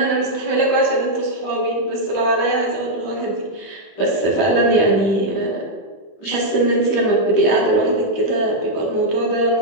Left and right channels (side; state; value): right; late; 23 ms